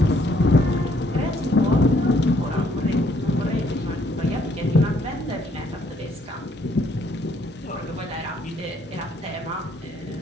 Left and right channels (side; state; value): both; normal; correlation 0.67